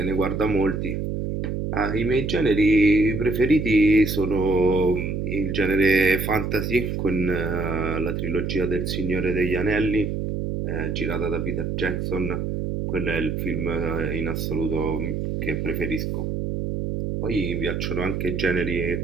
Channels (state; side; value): noise; right; hum, 2 dB below the sound